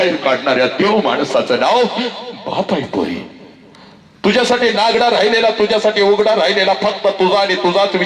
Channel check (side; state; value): both; identical; correlation 1.00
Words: काढणाऱ्या देव माणसाचं नाव बाप आहे पोरी. तुझ्यासाठी नागडा राहिलेला, तुझ्यासाठी उघडा राहिलेला, फक्त तुझा आणि तुझाच